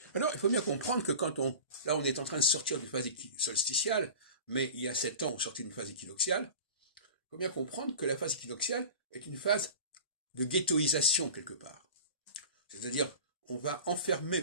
Alors, il faut bien comprendre que là, on est en train de sortir d'une phase solsticiale, mais il y a 7 ans, on sortait d'une phase équinoxiale. Il faut bien comprendre que la phase équinoxiale est une phase de ghettoisation quelque part. C'est-à-dire, on va enfermer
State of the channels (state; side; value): inverted; both; correlation -0.37